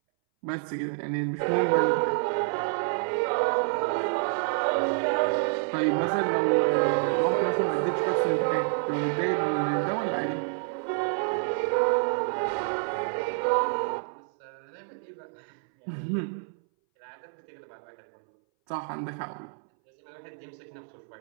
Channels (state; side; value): silent; left; 59 dB below the other